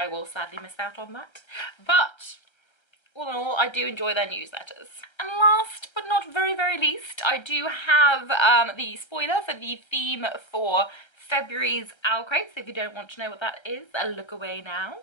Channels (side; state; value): right; late; 1.3 ms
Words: will sadly miss out on that. But all in all, I do enjoy their newsletters. And last but not very, very least, I do have the spoiler for the theme for February's OwlCrate. So if you don't want to know what that is, look away now.